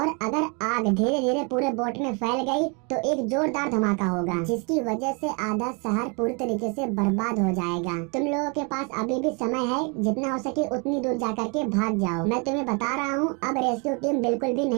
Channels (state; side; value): quieter; left; 33.0 dB